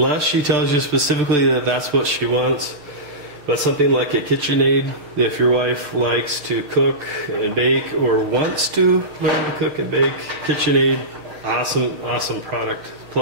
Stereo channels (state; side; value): late; left; 6.8 ms